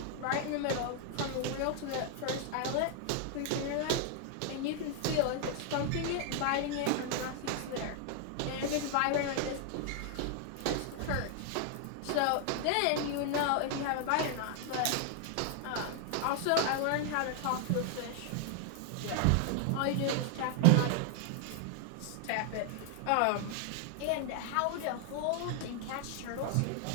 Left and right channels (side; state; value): both; different; correlation 0.00